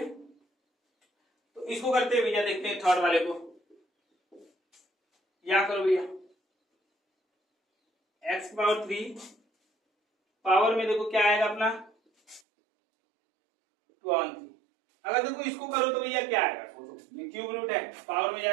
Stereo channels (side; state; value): left; drops out; at 12.4 s